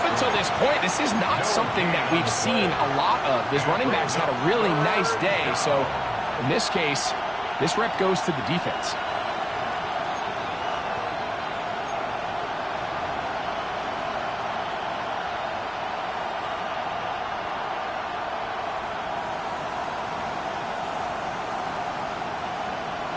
until this point, this is not something that we've seen a lot of. His running backs had a really nice day. So in this case, this rep goes to the defense.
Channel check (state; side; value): identical; both; correlation 1.00